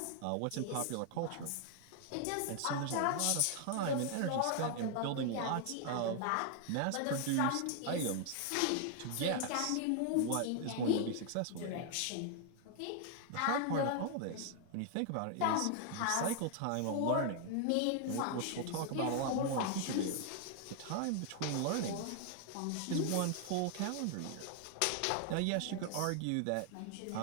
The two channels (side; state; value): both; different; correlation 0.00